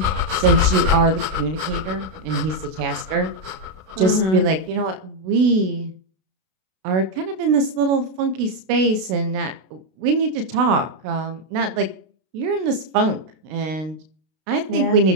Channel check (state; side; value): late; left; 32 ms